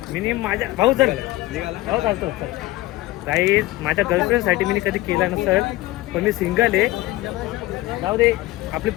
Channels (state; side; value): quieter; right; 18.3 dB